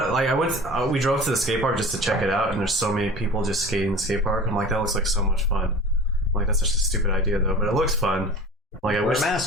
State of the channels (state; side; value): normal; both; correlation 0.38